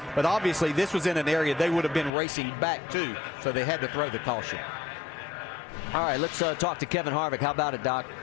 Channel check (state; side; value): drops out; right; at 2.1 s